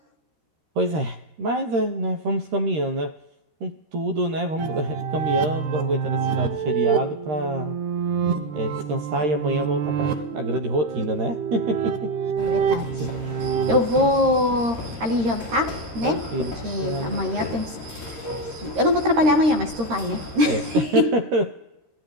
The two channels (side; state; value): left; late; 13 ms